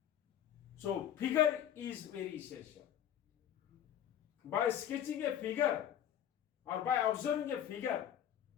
so figure is very essential. By sketching a figure or by observing a figure,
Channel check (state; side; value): quieter; right; 10.4 dB